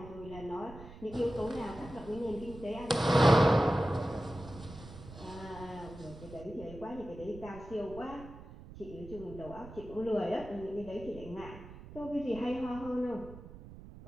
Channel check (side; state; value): right; noise; rumble, 15 dB below the sound